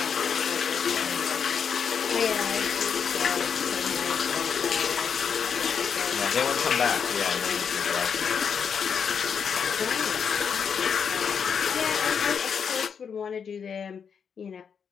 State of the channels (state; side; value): quieter; right; 6.8 dB